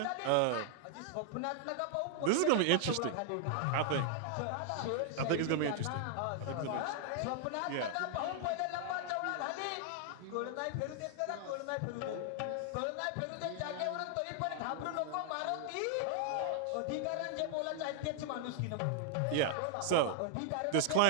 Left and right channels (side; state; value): both; different; correlation 0.00